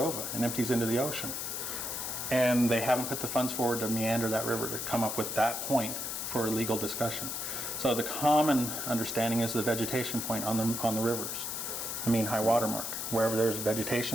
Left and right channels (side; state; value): left; noise; hiss, 4 dB below the sound